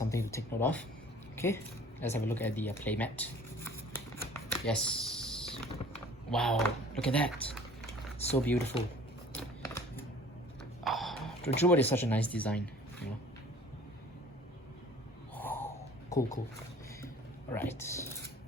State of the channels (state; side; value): normal; both; correlation 0.49